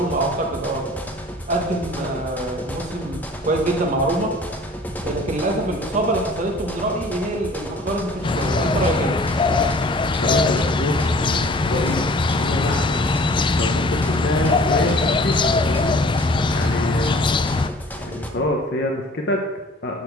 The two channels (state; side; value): normal; both; correlation 0.49